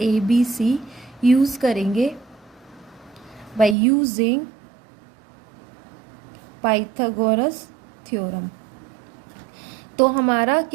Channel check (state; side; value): drops out; left; at 3.8 s